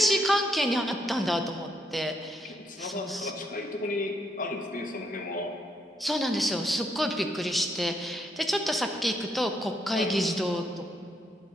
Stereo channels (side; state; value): both; normal; correlation 0.75